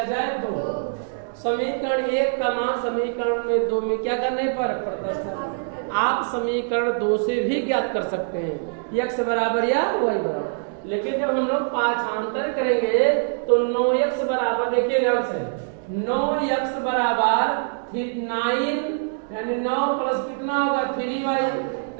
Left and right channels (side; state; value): left; silent; digital silence